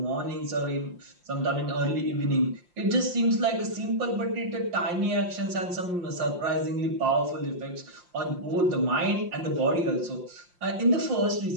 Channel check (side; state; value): left; late; 5.7 ms